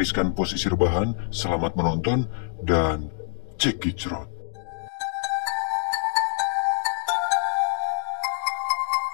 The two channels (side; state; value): right; silent; digital silence